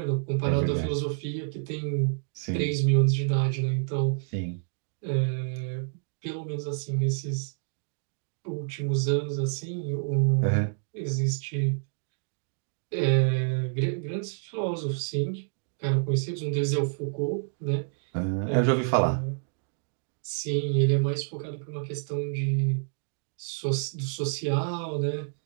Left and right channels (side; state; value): left; silent; digital silence